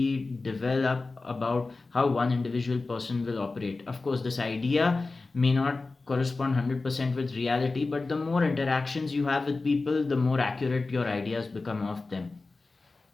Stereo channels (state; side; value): quieter; right; 3.6 dB